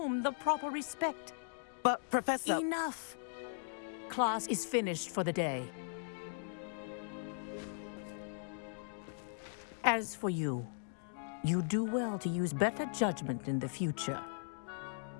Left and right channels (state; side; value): silent; right; digital silence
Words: the proper respect. But, Professor... Enough. Class is finished for the day. As for you, you do well to use better judgment in the future.